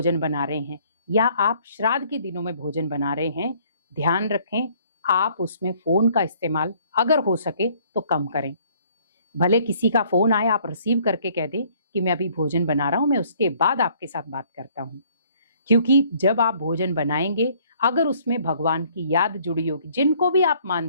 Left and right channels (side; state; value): both; inverted; correlation -0.61